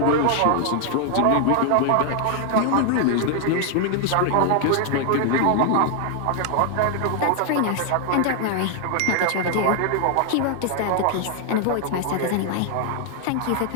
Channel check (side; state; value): both; different; correlation 0.00